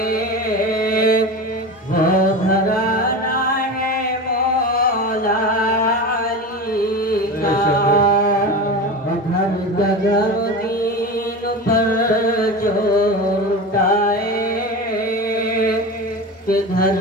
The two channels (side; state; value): both; normal; correlation 0.27